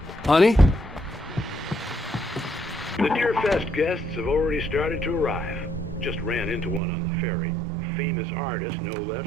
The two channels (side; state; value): left; drops out; at 6.8 s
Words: Honey? The Deerfest guests have already started to arrive. Just ran into one on the ferry. A famous artist, no